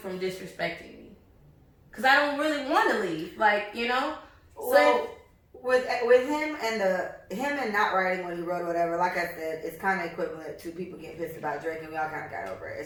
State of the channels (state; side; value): identical; both; correlation 1.00